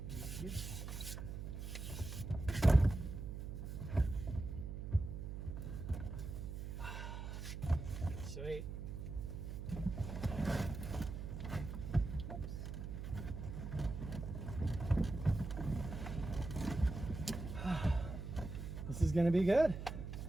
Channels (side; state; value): right; noise; hum, 6 dB below the sound